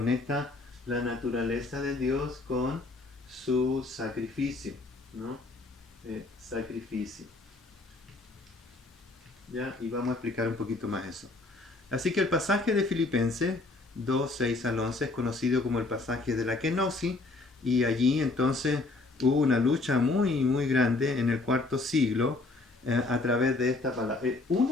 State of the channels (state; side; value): quieter; right; 3.3 dB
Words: la naturaleza de Dios con su sacrificio, ¿no? Sacrificio. ¿Ya? Y vamos a explicar un poquito más eso. Así que el pasaje de Filipenses 2, 6 al 11 es conocido como el pasaje de la kenosis, y allí entonces hubo una lucha muy muy grande en el IV siglo a través de esta palabra.